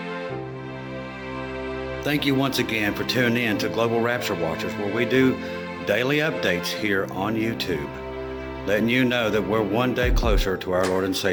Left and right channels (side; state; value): both; identical; correlation 1.00